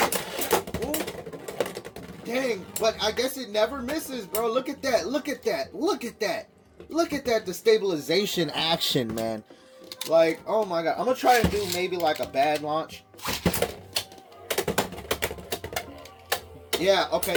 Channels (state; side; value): identical; both; correlation 1.00